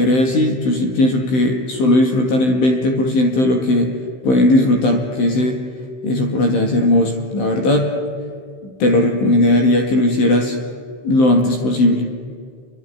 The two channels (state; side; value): late; right; 16 ms